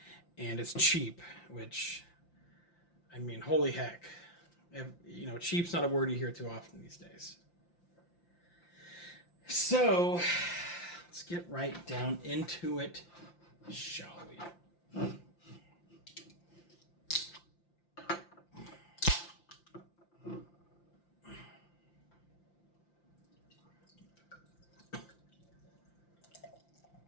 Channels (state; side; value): late; right; 5.8 ms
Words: and it's cheap, which, I mean, holy heck. Cheap's not a word you hear too often these days. So, let's get right down into it, shall we?